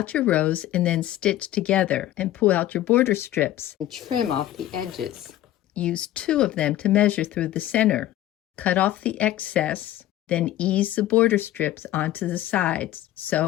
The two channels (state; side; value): quieter; right; 13.9 dB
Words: your rows and then stitch together and pull out your border strips and trim off the edges. Use 2 of them to measure through the center. Cut off the excess, then ease the border strips onto the sides.